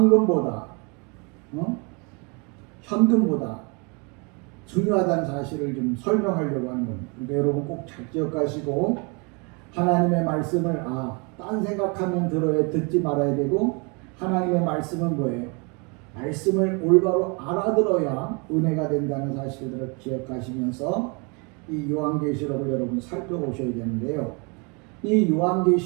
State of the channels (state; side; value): quieter; left; 32.2 dB